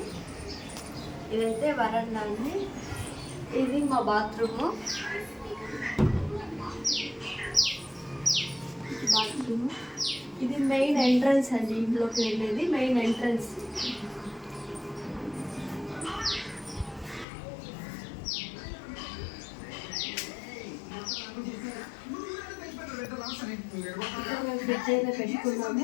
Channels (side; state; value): right; drops out; at 17.2 s